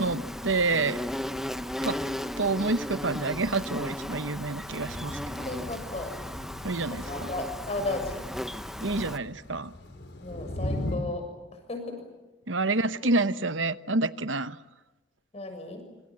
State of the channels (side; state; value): both; normal; correlation 0.21